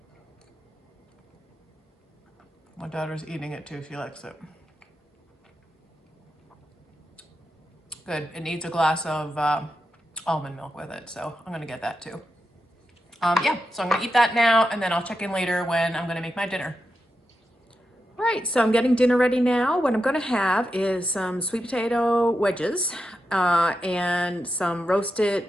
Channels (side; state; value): both; normal; correlation 0.88